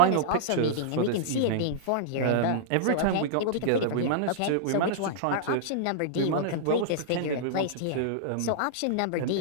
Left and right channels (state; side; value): different; both; correlation -0.02